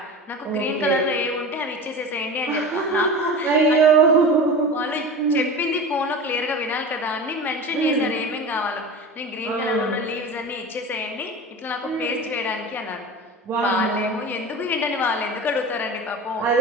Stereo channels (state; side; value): normal; both; correlation 0.31